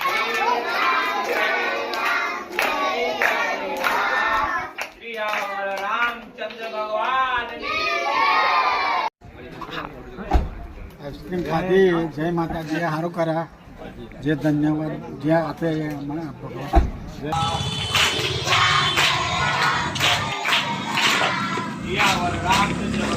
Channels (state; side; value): identical; both; correlation 1.00